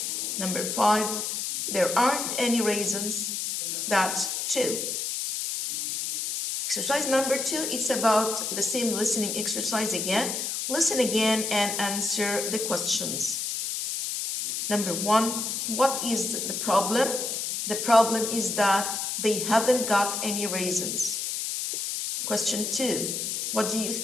Number 5, there aren't any raisins. That's true. Exercise number 2 is about the same listening exercise again. Listen again and answer the questions. Number 1, what is the problem? The problem is that they haven't got any raisins. Question 2, what do you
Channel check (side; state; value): left; noise; hiss, 2 dB below the sound